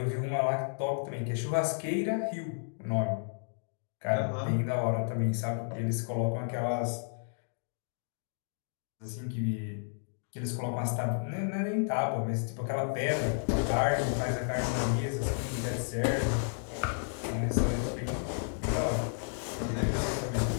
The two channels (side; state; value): right; silent; digital silence